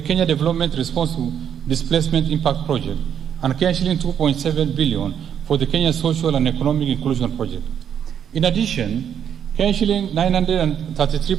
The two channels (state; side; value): quieter; left; 8.7 dB